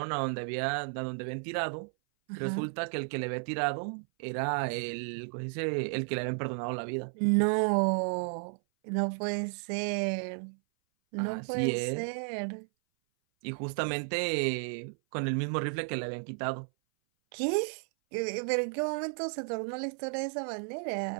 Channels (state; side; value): silent; left; 56 dB below the other